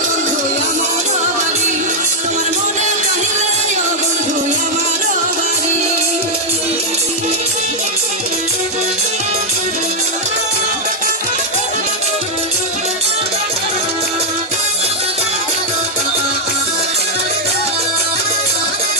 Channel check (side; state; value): both; normal; correlation -0.02